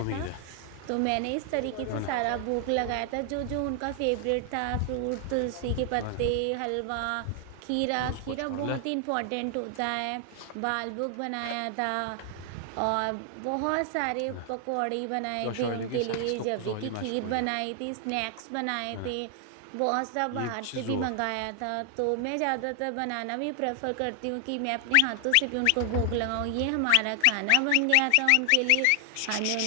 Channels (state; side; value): different; both; correlation 0.00